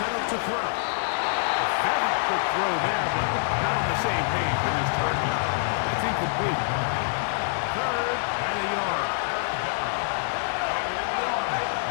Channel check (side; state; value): right; silent; digital silence